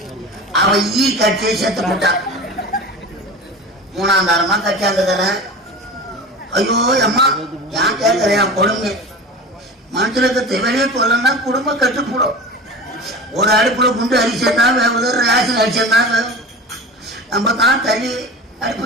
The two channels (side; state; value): both; normal; correlation 0.32